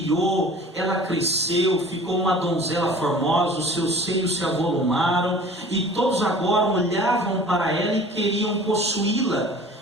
ela cresceu, ficou uma donzela formosa, os seus seios se avolumaram, e todos agora olhavam para ela e queriam possuí-la.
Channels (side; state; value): both; normal; correlation 0.45